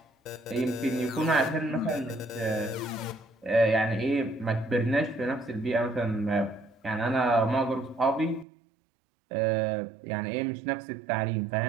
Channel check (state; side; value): drops out; left; at 8.5 s